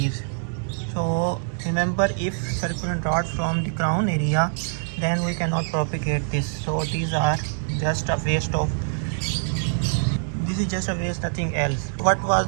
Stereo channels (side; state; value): left; silent; digital silence